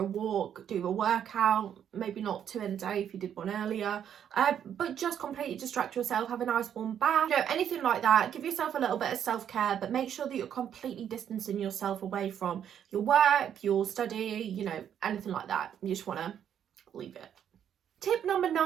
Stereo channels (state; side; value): quieter; left; 9.2 dB